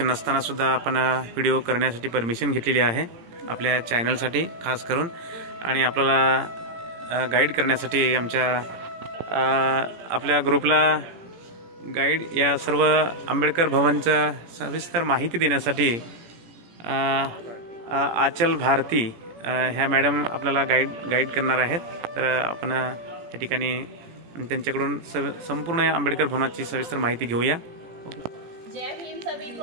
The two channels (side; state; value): left; late; 17 ms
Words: नसताना सुद्धा आपण व्हिडिओ करण्यासाठी परमिशन घेतलेली आहे आपल्या चॅनलसाठी खास करून, आणि आपल्याला गाईड करण्यासाठी आपल्या ग्रुपला गाईड या सर्व आंबेडकर भवनचं सविस्तर माहिती देण्यासाठी आचल भारती ह्या मॅडम आपल्याला गाईड करणार आहेत। तर आपण या ठिकाणी त्यांच्याकडून संपूर्ण आंबेडकर भवनाची सविस्तर माहिती घेऊया। जय भीम सभी